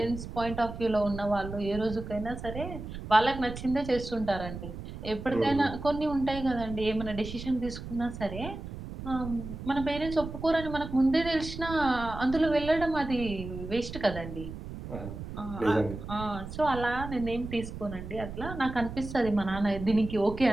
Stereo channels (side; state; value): right; noise; rumble, 9 dB below the sound